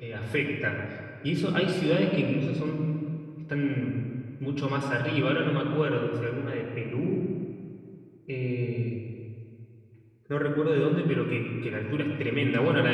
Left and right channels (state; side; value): identical; both; correlation 1.00